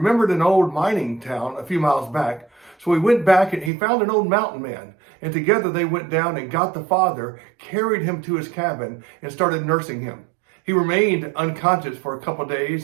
an old mining town a few miles back. So he went back and he found an old mountain man. And together they went down and got the father, carried him to his cabin, and started nursing him. He remained unconscious for a couple of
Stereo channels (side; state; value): left; drops out; at 3.7 s